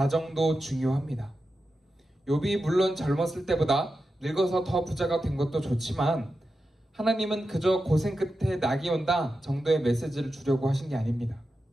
중요합니다. 욥이 물론 젊었을 때보다 늙어서 더 부자가 된 것도 좋지만 하나님은 그저 고생 끝에 낙이 온다 정도의 메시지를 주려고 하신 게 아닙니다.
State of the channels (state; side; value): normal; both; correlation 0.90